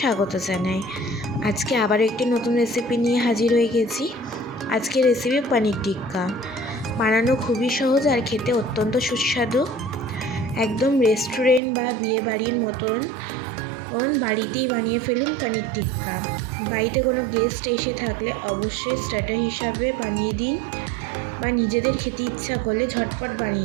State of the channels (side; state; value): left; drops out; at 11.6 s